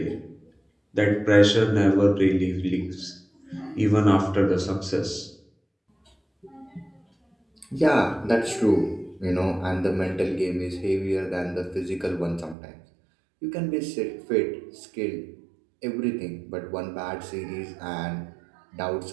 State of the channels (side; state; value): left; drops out; at 12.6 s